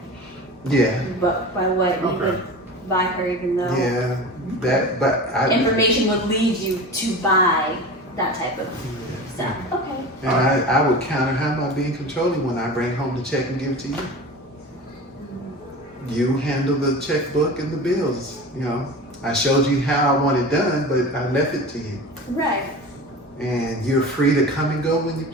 Yeah, but by what you would buy her, even though yeah, information would lead you to buy that type of stuff. Okay. And I would counter, how am I being controlling when I bring home the check and give it to you? You handle the checkbook and the bills, you know. I showed you how I want it done, but I left it to you. Right. And you're free to come and go when you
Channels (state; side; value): normal; both; correlation 0.33